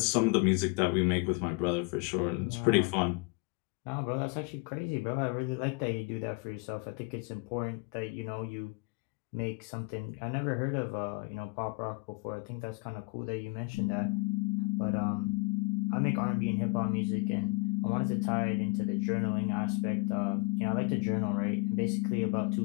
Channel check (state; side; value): quieter; right; 25.6 dB